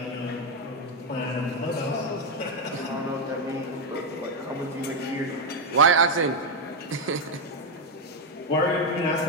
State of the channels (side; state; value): both; normal; correlation 0.05